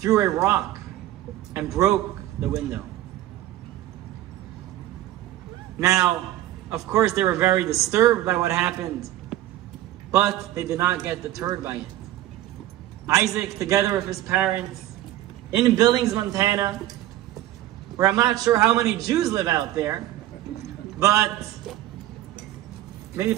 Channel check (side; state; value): left; quieter; 14.2 dB